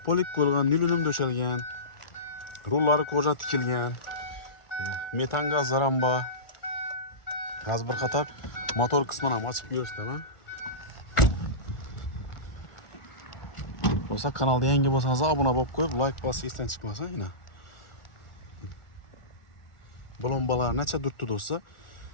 polik qo'yilgan, nilunum döşelgan. Rullari koja tikilgan. Metan gazlar ham bor. Gaz bir qator motor qismini ham ochib ko'rsataman. Bo'lsa kanalga yangi bo'lsangiz obuna bo'lib qo'yib, like bosib esdan chiqmasa, yana. Balonbalar necha durtdi do'stlar?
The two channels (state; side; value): late; right; 1.4 ms